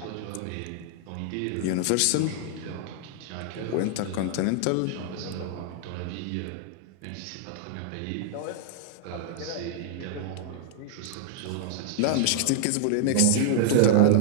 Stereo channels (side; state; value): both; different; correlation -0.01